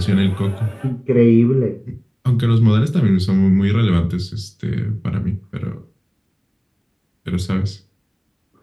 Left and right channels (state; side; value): identical; both; correlation 1.00